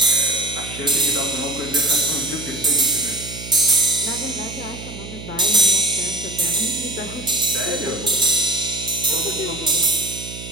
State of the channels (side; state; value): right; noise; hum, 12 dB below the sound